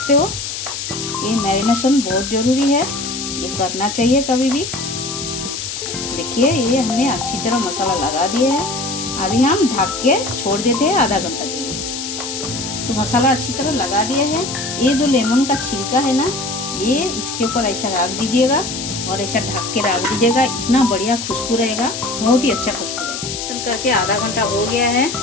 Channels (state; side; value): noise; left; hiss, 6 dB below the sound